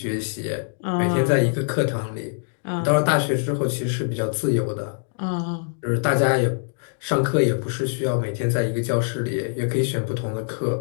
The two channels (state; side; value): silent; right; digital silence